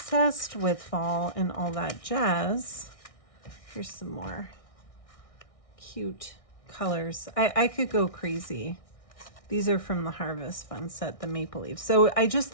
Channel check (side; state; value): right; late; 1.6 ms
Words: with fall and all that jazz, here's some more cute colors. I could go crazy. These are from the Harvest Fun set, the maple leaves. So I just